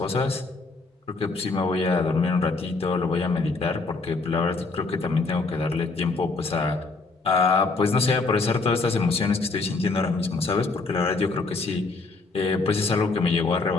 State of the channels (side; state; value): right; quieter; 3.8 dB